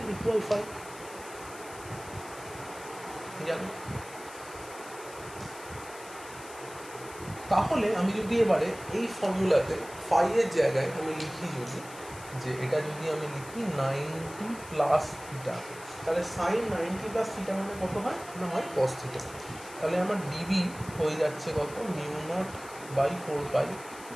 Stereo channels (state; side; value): noise; left; hiss, 17 dB below the sound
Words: equal phi. জানো, তাহলে আমি যদি এবারে এই ফর্মুলাতে ফাইয়ের জায়গায় আমি লিখি, যদি যে এটা যদি আমি লিখি 90 প্লাস থিটা, তাহলে সাইন 90 প্লাস থিটা মানে কত হয় না, হয় কস থিটা। তাহলে আমার ডিবি হয়ে যাচ্ছে কত, μ0/4 পাই